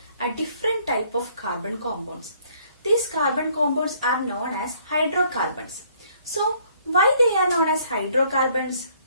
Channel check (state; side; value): inverted; both; correlation -0.63